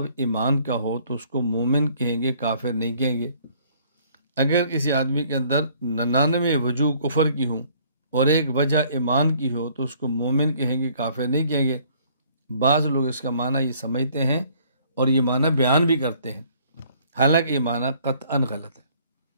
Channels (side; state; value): both; inverted; correlation -0.60